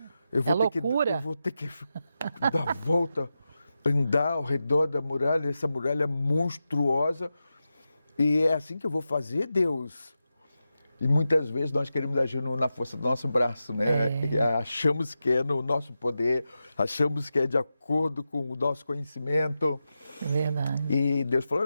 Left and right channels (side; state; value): both; inverted; correlation -0.91